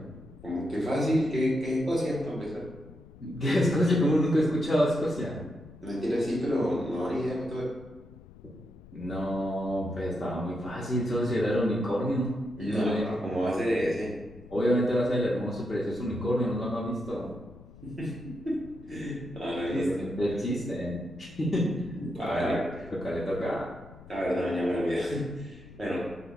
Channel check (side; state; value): left; noise; rumble, 20 dB below the sound